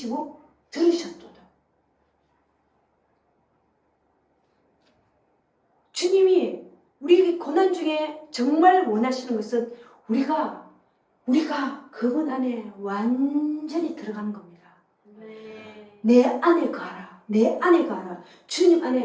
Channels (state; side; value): identical; both; correlation 1.00